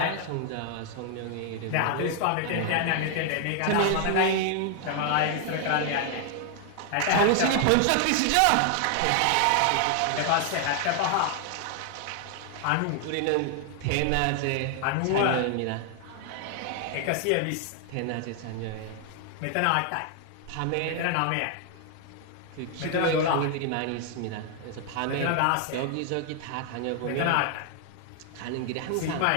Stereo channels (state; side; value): different; both; correlation 0.00